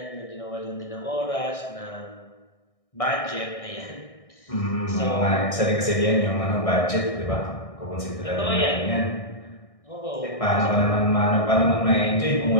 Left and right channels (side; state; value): right; late; 1.6 ms